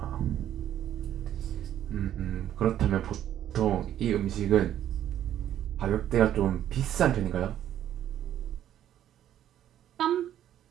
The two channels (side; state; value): left; quieter; 11.2 dB